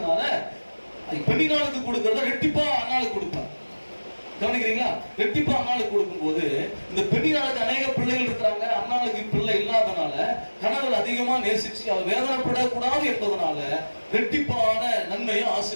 பெண்ணினாளுக்கு கொடுக்கறத ரெட்டிப்பா அன்னாளுக்கு கொடுப்பார். கவனிக்கிறீங்களா? ரெட்டிப்பா அன்னாளுக்கு கொடுக்கும் போது இந்த பெண்ணினாளுக்கு அநேக பிள்ளைகள் இருக்கிறாங்க, அன்னாளுக்கு பிள்ளை இல்லாதனால கணவர் அதிகமா நேசிச்சு அவர் வேதனைப்படக்கூடாது என்பதனால ரெட்டிப்பான நன்மையும்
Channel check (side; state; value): both; inverted; correlation -1.00